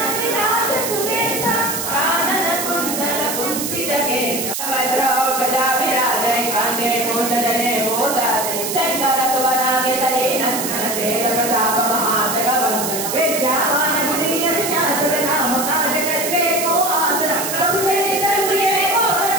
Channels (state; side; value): noise; right; hiss, 3 dB below the sound